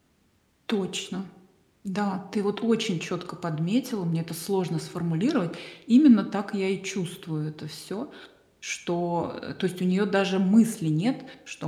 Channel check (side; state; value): both; identical; correlation 1.00